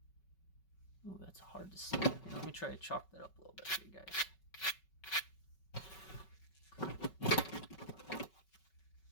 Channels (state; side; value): late; right; 5.3 ms